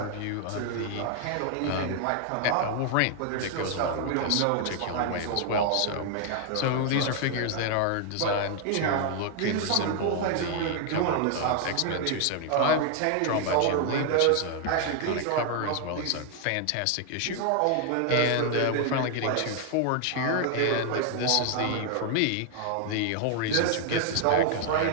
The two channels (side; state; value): both; different; correlation 0.00